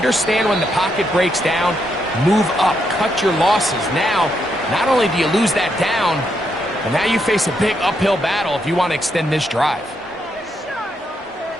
when the pocket breaks down, move up, cut your losses. Now, not only do you lose that down, but now you face a big uphill battle if you want to extend this drive.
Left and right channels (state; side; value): normal; both; correlation 0.79